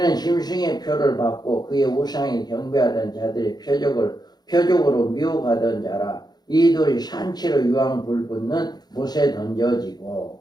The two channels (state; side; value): late; right; 0.20 ms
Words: 짐승의 표를 받고 그의 우상에 경배하던 자들의 표적으로 미혹하던 자라. 이들이 산채로 유황 불붙는 못에 던져지고.